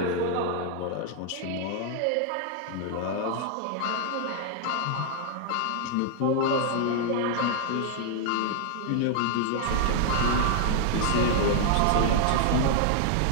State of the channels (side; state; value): both; different; correlation 0.00